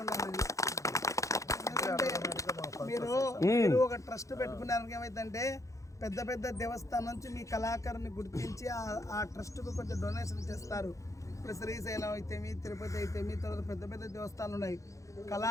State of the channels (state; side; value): late; right; 0.15 ms